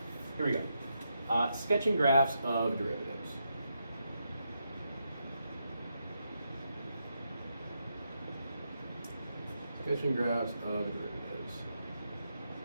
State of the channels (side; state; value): both; inverted; correlation -0.83